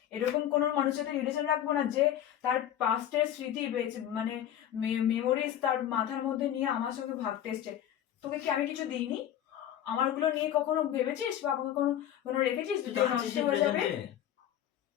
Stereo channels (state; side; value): quieter; right; 11.0 dB